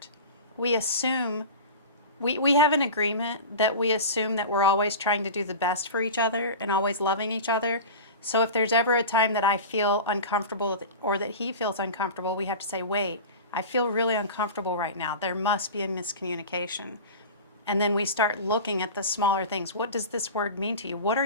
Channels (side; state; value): both; inverted; correlation -0.32